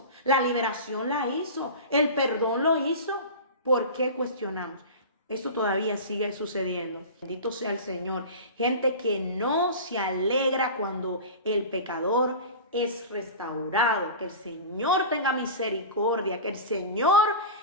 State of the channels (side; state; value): both; inverted; correlation -0.31